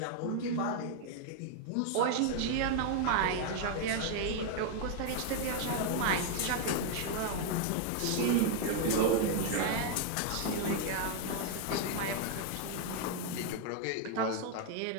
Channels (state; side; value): different; both; correlation 0.00